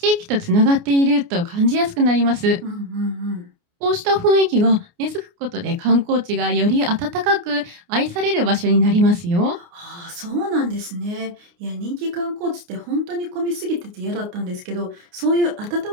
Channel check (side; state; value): left; late; 29 ms